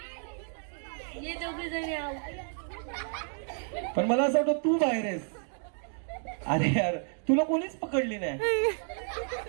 पण मला असं वाटतं तू बाहेर आहेस. अरे यार तुला कोणीच पकडली नाही.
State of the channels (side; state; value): left; silent; 57 dB below the other